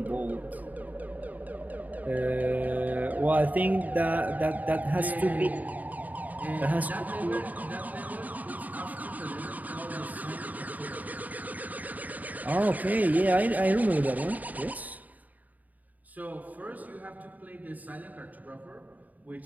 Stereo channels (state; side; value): late; left; 0.077 ms